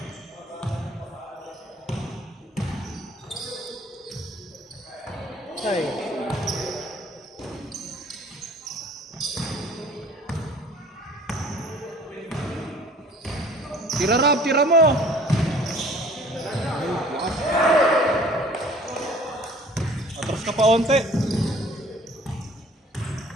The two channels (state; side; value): normal; both; correlation 0.51